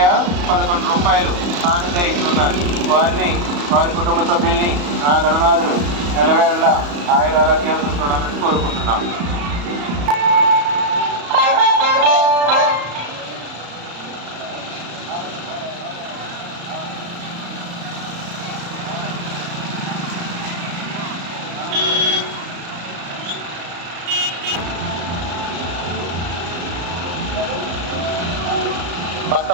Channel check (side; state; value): left; late; 34 ms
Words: 11 రూపాయలు కానుకగా ఇస్తున్నారు. వారిని వారి కుటుంబ సభ్యుల్ని ఆ గణనాథుడు ఎల్లవేళ ఆయురారోగ్యాలతో చూడాలని కోరుకుంటున్నాం. భక్త